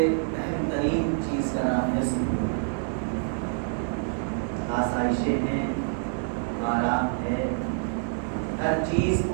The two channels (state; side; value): silent; left; digital silence